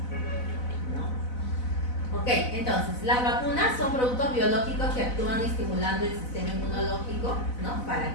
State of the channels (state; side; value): late; right; 4.0 ms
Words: ¿no? Ok, entonces, las vacunas son productos biológicos que actúan estimulando el sistema inmunológico, ¿no?